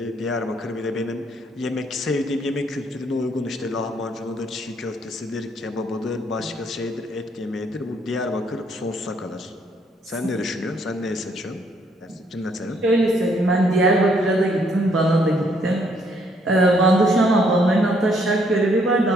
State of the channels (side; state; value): both; normal; correlation 0.69